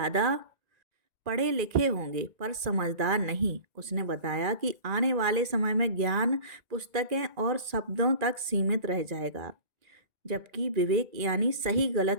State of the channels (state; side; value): late; left; 1.9 ms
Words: पढ़े लिखे होंगे, पर समझदार नहीं। उसने बताया कि आने वाले समय में ज्ञान पुस्तकें और शब्दों तक सीमित रह जाएगा, जबकि विवेक यानी सही